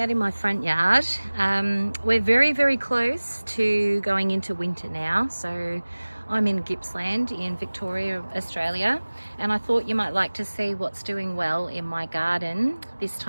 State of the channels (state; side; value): inverted; both; correlation -1.00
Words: in my front yard. We're very close to going into winter now. So I'm in Gippsland in Victoria, Australia. And I thought you might like to see what's doing well in my garden this